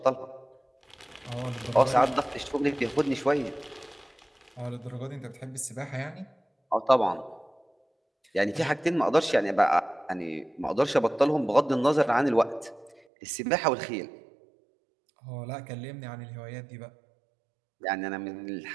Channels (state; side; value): drops out; left; at 13.0 s